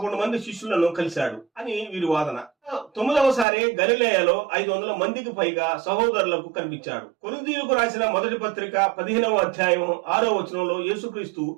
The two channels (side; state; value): left; drops out; at 3.5 s